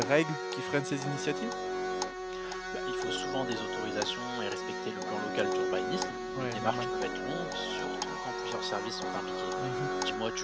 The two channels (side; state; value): both; identical; correlation 1.00